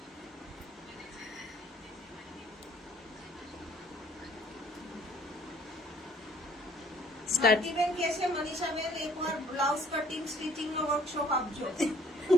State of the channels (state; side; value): normal; both; correlation 0.58